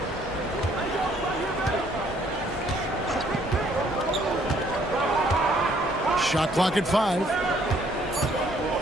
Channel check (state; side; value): normal; both; correlation 0.64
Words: Shot clock at 5.